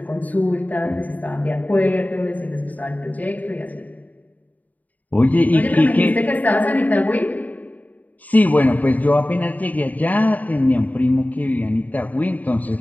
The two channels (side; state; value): right; late; 0.076 ms